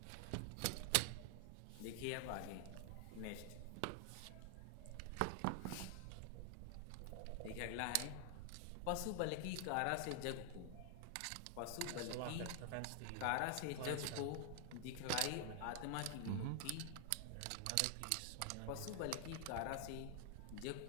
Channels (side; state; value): both; different; correlation 0.00